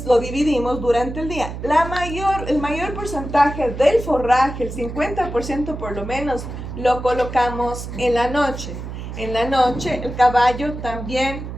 lo dividimos durante el día. El mayor porcentaje del forraje, el 50% por lo menos, lo colocamos en la noche. En la noche, el caballo también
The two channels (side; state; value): right; noise; hum, 8 dB below the sound